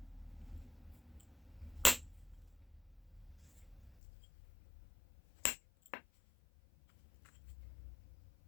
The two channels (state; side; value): drops out; right; at 4.0 s